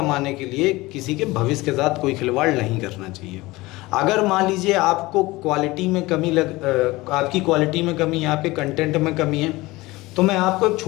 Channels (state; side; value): quieter; right; 20.5 dB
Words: के लिए किसी के भविष्य के साथ कोई खिलवाड़ नहीं करना चाहिए। अगर मान लीजिए आपको क्वालिटी में कमी आपकी क्वालिटी में कमी है, आपके कंटेंट में कमी है, तो मैं आपको एक